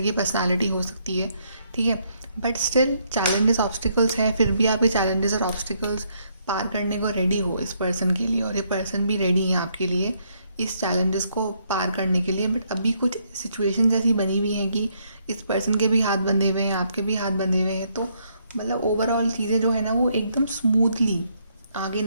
पर्सनालिटी हो सकती है। ठीक है, बट स्टिल चैलेंजेस ऑब्स्टिकल्स हैं, फिर भी आप ये चैलेंजेस और ऑब्स्टिकल्स पार करने को रेडी हो इस पर्सन के लिए, और ये पर्सन भी रेडी है आपके लिए इस चैलेंजेस को पार करने के लिए। बट अभी कुछ सिचुएशंस ऐसी बनी हुई हैं कि इस पर्सन के भी हाथ बंधे हुए हैं, आपके भी हाथ बंधे हुए हैं, तो मतलब ओवरऑल चीज़ें जो है ना वो एकदम स्मूथली आगे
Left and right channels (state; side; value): inverted; both; correlation -0.72